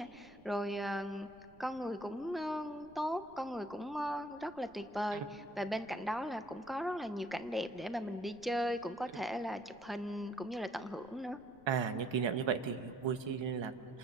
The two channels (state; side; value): noise; right; rumble, 26 dB below the sound